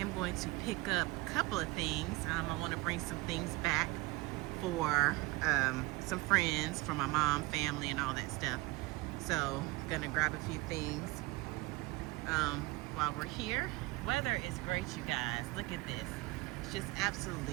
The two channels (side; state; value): left; quieter; 21.1 dB